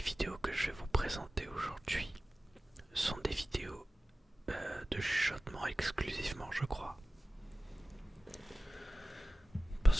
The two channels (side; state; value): both; normal; correlation 0.95